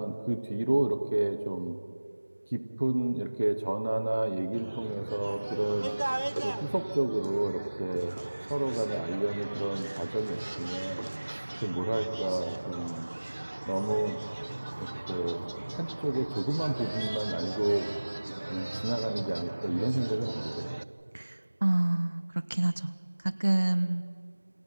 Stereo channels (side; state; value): both; inverted; correlation -1.00